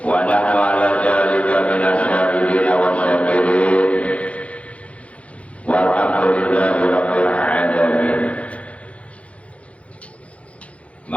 wa nahnu ala dzalika minasyahidina wa syakirin walhamdulillahi rabbil alamin.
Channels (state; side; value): late; right; 0.063 ms